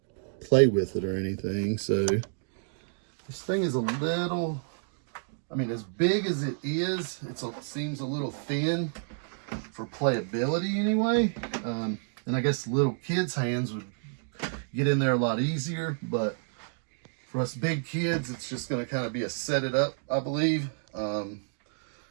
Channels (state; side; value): silent; left; digital silence